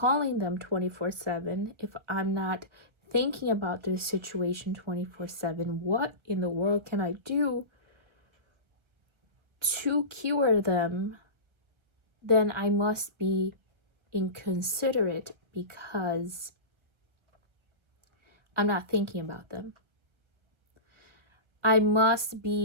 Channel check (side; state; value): left; late; 1.3 ms